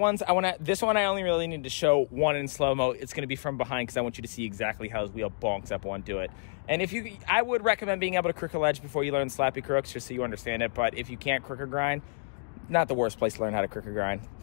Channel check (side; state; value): right; silent; digital silence